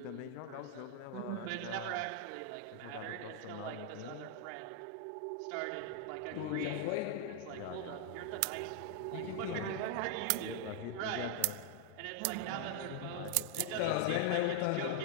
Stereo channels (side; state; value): both; different; correlation 0.00